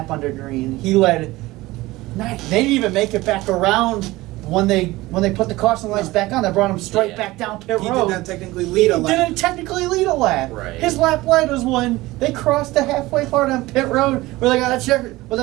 under green. He led. They didn't even make it back around when they put the caution lights back on. They brought him straight back down pit road. He did not technically lead a lap. He didn't technically lead a lap. Right. His lap light was when they crossed the halfway part on pit road where they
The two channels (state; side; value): quieter; left; 19.1 dB